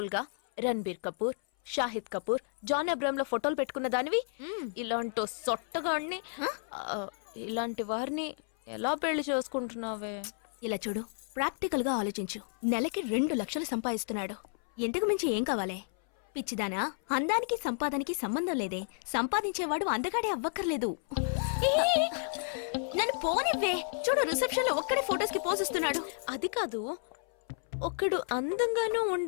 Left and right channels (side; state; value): right; silent; 57 dB below the other